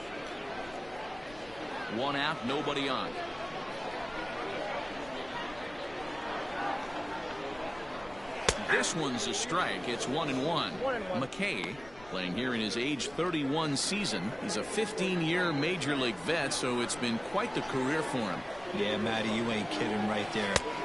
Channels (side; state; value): left; noise; rumble, 20 dB below the sound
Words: One out, nobody on. This one's a strike. It's 1-1. McKay, playing here in his age 31 season. He's a 15-year major league vet, so it's been quite the career for him. Yeah, Matty, you ain't kidding right there.